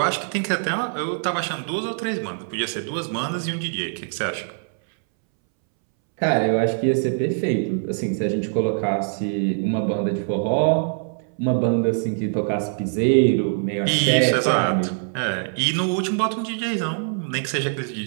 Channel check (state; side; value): silent; left; 63 dB below the other